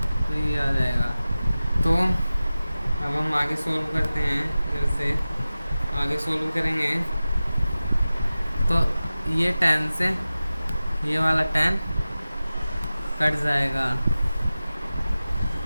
तो ये आ जाएगा। तो अब हम आगे सोल्व करते हैं, जैसे आगे सोल्व करेंगे तो ये tan से ये वाला tan कट जाएगा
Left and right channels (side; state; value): both; inverted; correlation -0.96